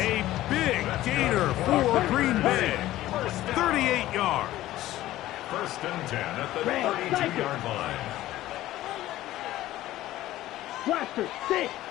big gainer for Green Bay. 38 yards. 1st and 10 at the 32-yard line. Blaster 6.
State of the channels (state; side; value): quieter; right; 15.1 dB